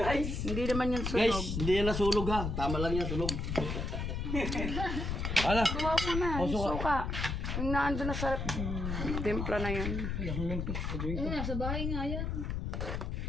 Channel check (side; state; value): left; noise; rumble, 2 dB below the sound